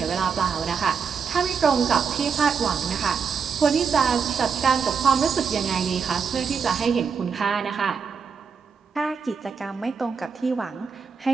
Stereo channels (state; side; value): quieter; left; 6.0 dB